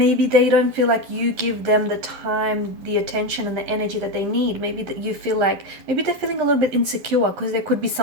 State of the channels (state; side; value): late; left; 11 ms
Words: they don't feel like you give them the time, the attention, and the energy that they need. Maybe that you feel like, maybe they're feeling a little bit insecure because there could be